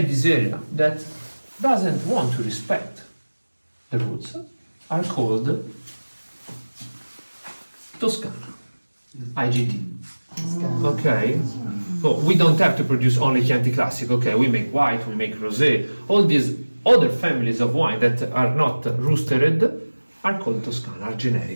this area that doesn't want to respect the roots are called Tuscan, IGT. Okay, so we don't have to produce only Chianti Classico. Okay, we make white, we make rosé. All these other families of wine that are not roostered are called Toscana, are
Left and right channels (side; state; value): both; inverted; correlation -1.00